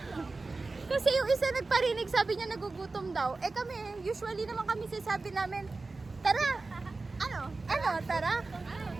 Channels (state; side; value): quieter; left; 3.6 dB